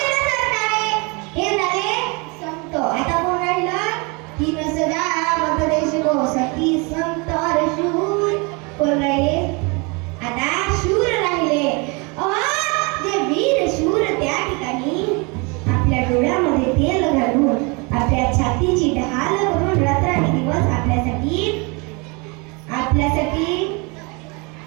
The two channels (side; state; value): left; quieter; 29.8 dB